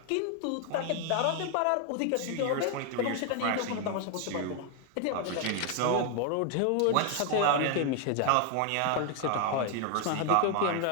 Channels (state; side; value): different; both; correlation 0.00